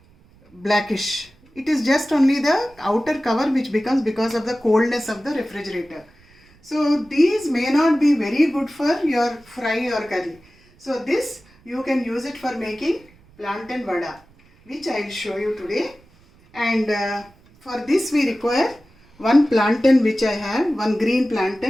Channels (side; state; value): right; noise; rumble, 29 dB below the sound